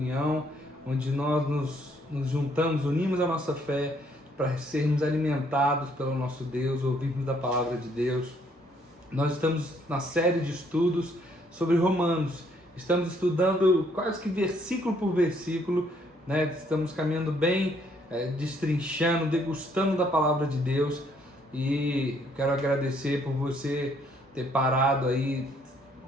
onde nós nos juntamos, unimos a nossa fé para sermos alimentados pelo nosso Deus, ouvirmos da palavra de Deus. Nós estamos na série de estudos sobre Romanos. Estamos estudando quase que versículo por versículo, né? Estamos caminhando bem, destrinchando, degustando da palavra de Deus. E quero agradecer por você ter parado aí,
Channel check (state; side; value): normal; both; correlation 0.67